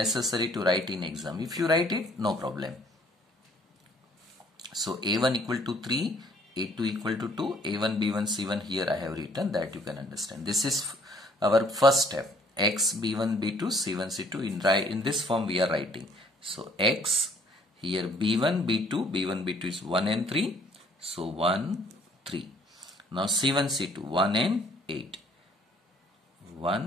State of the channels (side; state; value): both; normal; correlation 0.61